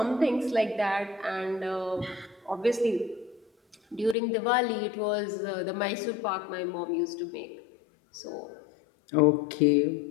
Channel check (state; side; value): drops out; right; at 4.2 s